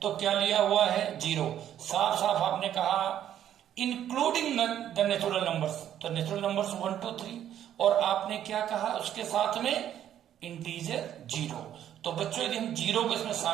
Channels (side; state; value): left; quieter; 10.7 dB